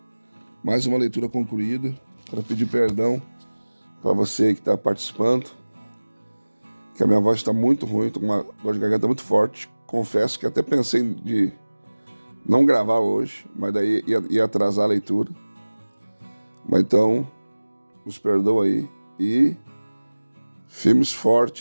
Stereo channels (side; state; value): both; inverted; correlation -1.00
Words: Mais uma leitura concluída. Quero pedir perdão para você que está participando, que a minha voz está muito ruim, estou com uma dor de garganta muito forte. Confesso que até pensei de não gravar hoje, mas daí ia atrasar a leitura. Mas então, nos perdoa aí, e firme e